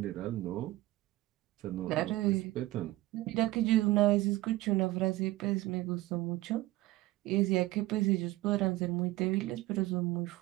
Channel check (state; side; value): quieter; left; 17.9 dB